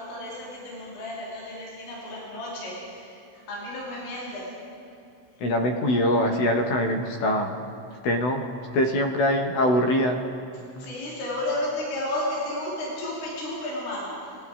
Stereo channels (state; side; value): late; right; 16 ms